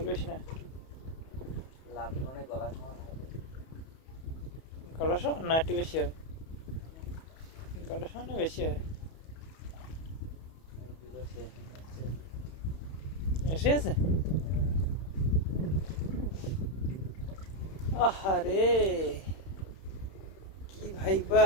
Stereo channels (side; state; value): right; late; 31 ms